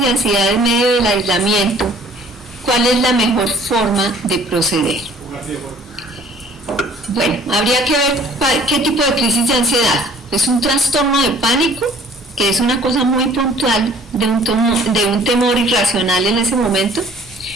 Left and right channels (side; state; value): both; normal; correlation 0.54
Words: de ansiedad en medio del aislamiento, ¿cuál es la mejor forma de proceder? Bueno, habría que ver qué tipo de crisis de ansiedad. ¿Es un trastorno de pánico, que es una cosa muy puntual de un temor irracional en ese momento?